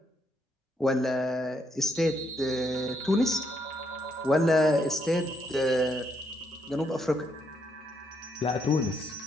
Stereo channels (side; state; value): both; normal; correlation 0.76